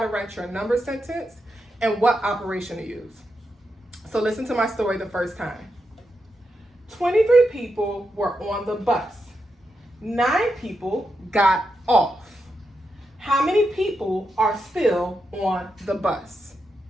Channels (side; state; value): both; normal; correlation 0.85